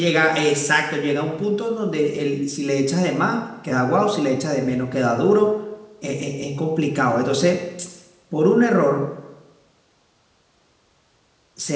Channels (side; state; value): both; identical; correlation 1.00